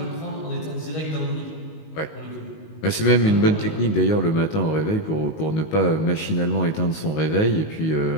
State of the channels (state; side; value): late; right; 19 ms